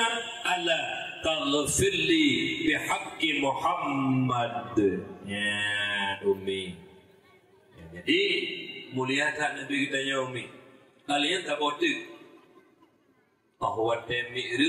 ala taghfirli bihaqqi Muhammad. Ya Umi, ya, jadi mulia tak Nabi kita ya Umi, kalian tak bodoh bahawa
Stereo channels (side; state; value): both; identical; correlation 1.00